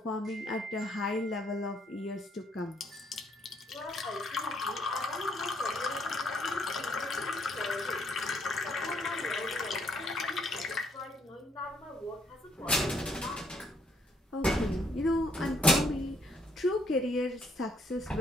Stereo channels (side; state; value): both; normal; correlation 0.69